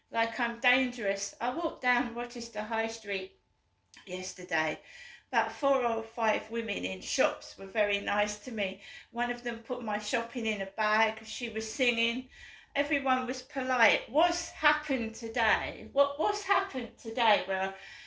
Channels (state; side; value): identical; both; correlation 1.00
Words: like I'm dangerous. I walked down Rochester High Street yesterday. About 4 or 5 women in shops were very nice to me. One of them put my shopping in a bag. She was singing. Everyone was polite. What's happened today? What's happened today